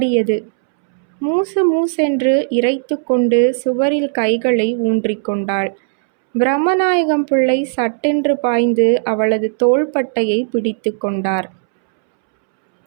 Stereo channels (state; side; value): silent; left; 69 dB below the other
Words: மூசு மூசென்று இறைத்து கொண்டு சுவரில் கைகளை ஊன்றிக்கொண்டாள். பிரம்மநாயகம் பிள்ளை சட்டென்று பாய்ந்து அவளது தோள்பட்டையை பிடித்து கொண்டார்.